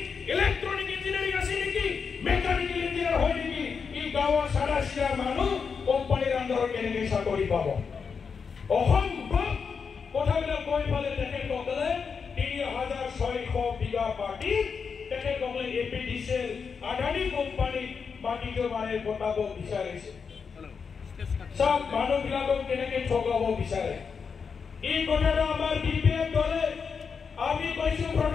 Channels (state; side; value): quieter; right; 5.8 dB